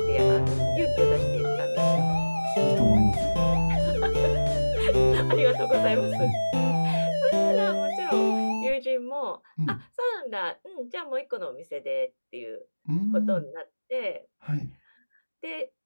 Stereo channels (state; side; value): inverted; both; correlation -1.00